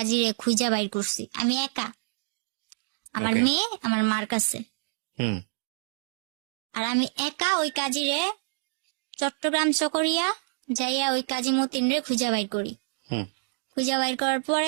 খুঁজা বাইর করছি আমি একা, আমার Okay. মেয়ে আমার মার কাছে। হুম। আর আমি একা ওই কাজিরে চট্টগ্রাম চকরিয়া যাইয়া ওই কাজী মতিন রে খুঁজা বাইর করি। হুম। খুঁজা বাইর করার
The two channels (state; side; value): silent; left; digital silence